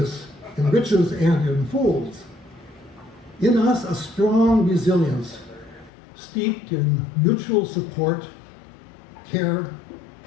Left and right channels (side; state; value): right; drops out; at 5.9 s